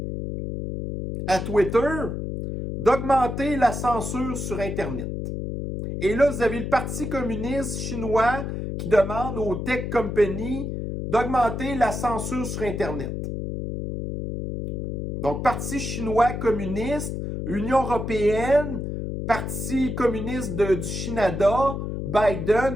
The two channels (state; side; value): noise; left; hum, 4 dB below the sound